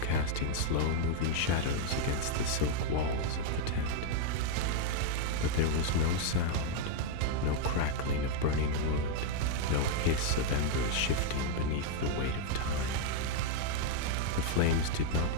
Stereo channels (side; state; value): both; different; correlation 0.00